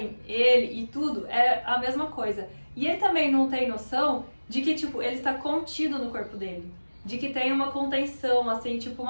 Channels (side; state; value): both; inverted; correlation -1.00